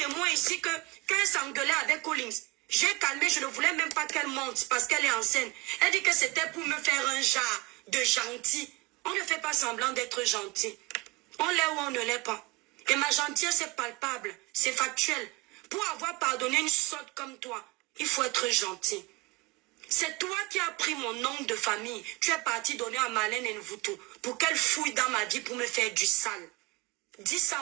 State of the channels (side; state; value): left; quieter; 23.7 dB